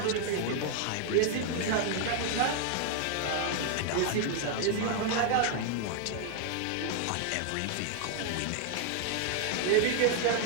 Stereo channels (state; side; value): different; both; correlation 0.00